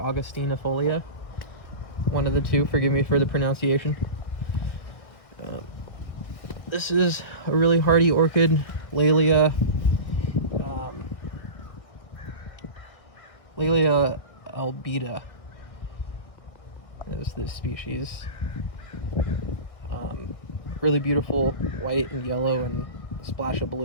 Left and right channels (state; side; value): late; right; 1.7 ms